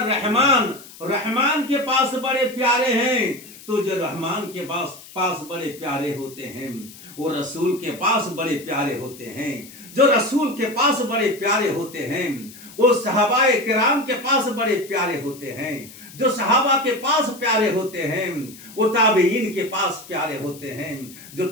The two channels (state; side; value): noise; left; hiss, 19 dB below the sound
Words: رحمان کے پاس بڑے پیارے ہیں. تو جو رحمان کے پاس بڑے پیارے ہوتے ہیں وہ رسول کے پاس بڑے پیارے ہوتے ہیں. جو رسول کے پاس بڑے پیارے ہوتے ہیں وہ صحابہ کرام کے پاس بڑے پیارے ہوتے ہیں. جو صحابہ کے پاس پیارے ہوتے ہیں وہ تابعین کے پاس پیارے ہوتے ہیں. جو